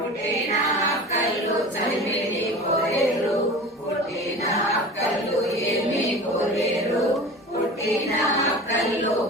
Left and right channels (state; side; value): normal; both; correlation 0.35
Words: అక్కలు చలిమిడి కోరేరు పుట్టిన అక్కలు ఏమి కోరేరు పుట్టిన అక్కలు